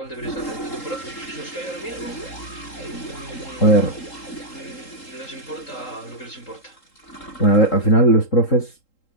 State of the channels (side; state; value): right; late; 3.8 ms